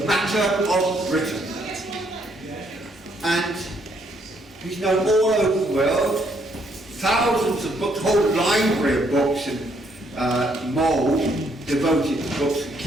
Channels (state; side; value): normal; both; correlation 0.71